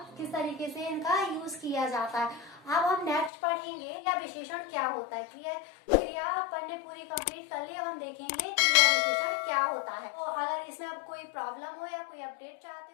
किस तरीके से इनका यूज किया जाता है। अब हम नेक्स्ट पढ़ेंगे क्रिया विशेषण क्या होता है। क्रिया अपन ने पूरी कंप्लीट कर ली। अब हम देखेंगे क्रिया विशेषण क्या होता है। तो अगर इसमें अब कोई प्रॉब्लम हो या कोई अपडेट चाहते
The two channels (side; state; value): right; drops out; at 3.3 s